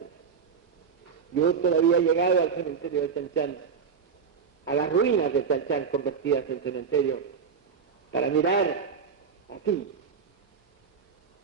Yo todavía he llegado al cementerio de Chanchán, a las ruinas de Chanchán convertidas en cementerio, para mirar así,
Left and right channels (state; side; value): quieter; left; 6.2 dB